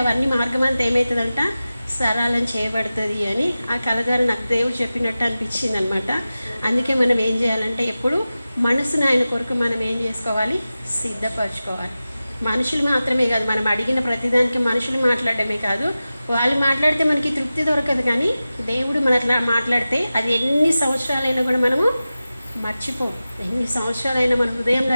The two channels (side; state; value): both; inverted; correlation -0.95